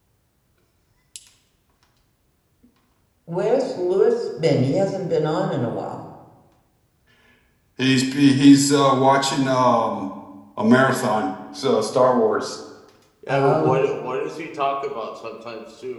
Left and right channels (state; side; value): identical; both; correlation 1.00